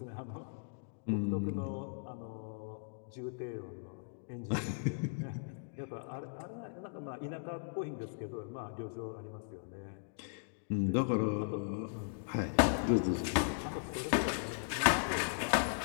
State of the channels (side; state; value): right; silent; digital silence